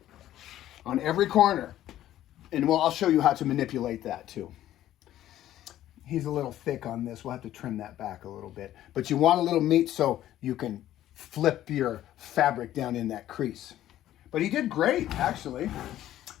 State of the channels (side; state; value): right; quieter; 13.0 dB